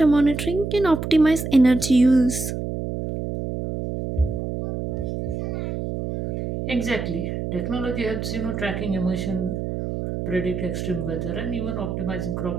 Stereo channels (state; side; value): noise; right; hum, 4 dB below the sound